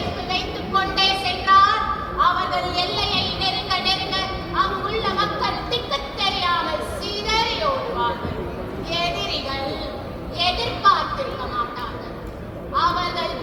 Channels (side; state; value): both; identical; correlation 1.00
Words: வைத்துக் கொண்டே சென்றால் அவர்கள் எல்லையை நெருங்க நெருங்க அங்குள்ள மக்கள் திக்கு தெரியாமல் சிதறி ஓடுவார்கள். எதிரிகள் எதிர்பார்த்திருக்க மாட்டார்கள். அவர்கள்